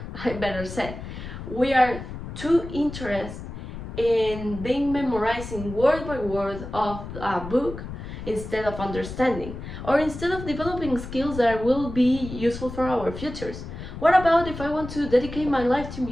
I better say, we are too interested in memorizing word by word of a book instead of understanding, or instead of developing skills that will be useful for our futures. What about if I want to dedicate my life to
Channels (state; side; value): noise; left; rumble, 10 dB below the sound